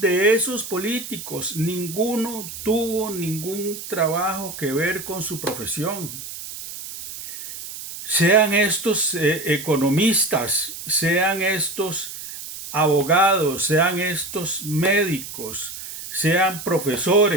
esos políticos, ninguno tuvo ningún trabajo que ver con su profesión. Sean estos economistas, sean estos abogados, sean estos médicos, sean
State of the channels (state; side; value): noise; right; hiss, 10 dB below the sound